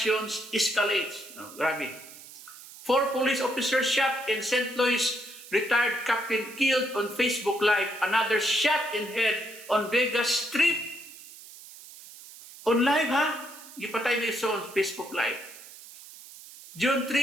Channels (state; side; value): noise; right; hiss, 17 dB below the sound